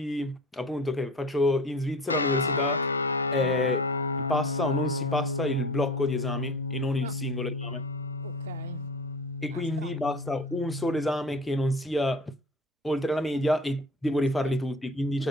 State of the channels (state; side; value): normal; both; correlation 0.38